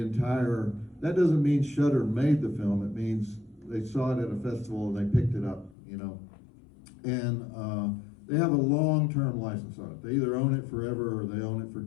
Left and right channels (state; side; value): drops out; right; at 5.8 s